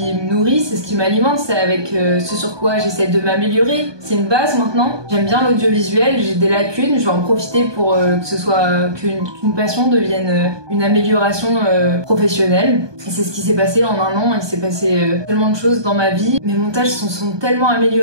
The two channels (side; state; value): left; late; 1.2 ms